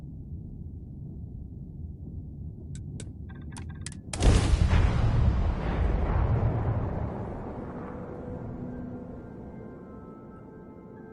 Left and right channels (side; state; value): both; identical; correlation 1.00